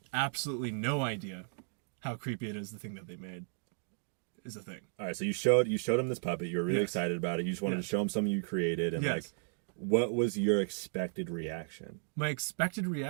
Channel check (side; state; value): left; silent; digital silence